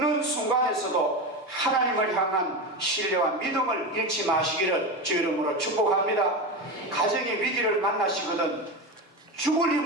순간에서도 하나님을 향한 신뢰와 믿음을 잃지 마시기를 주 이름으로 축복합니다. 가정의 위기를 만나시거든 죽을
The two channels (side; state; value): both; normal; correlation 0.20